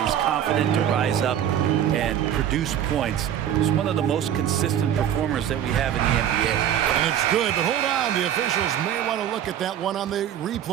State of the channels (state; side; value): quieter; left; 10.2 dB